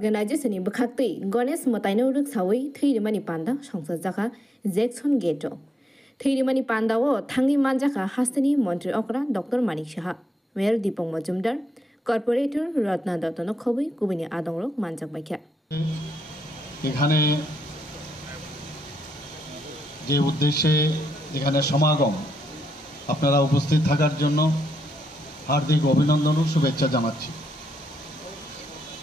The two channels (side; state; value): both; normal; correlation 0.80